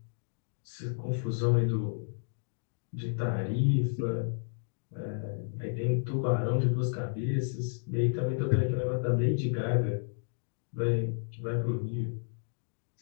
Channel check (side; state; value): right; silent; digital silence